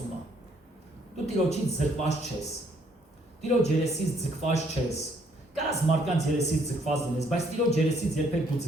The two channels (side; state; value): both; normal; correlation 0.67